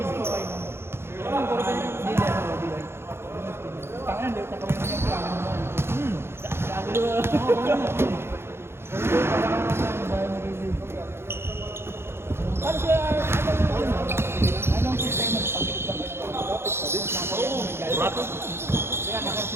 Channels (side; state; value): left; late; 0.12 ms